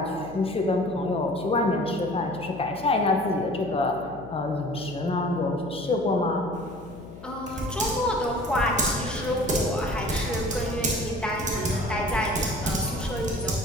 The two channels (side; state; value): left; noise; hum, 15 dB below the sound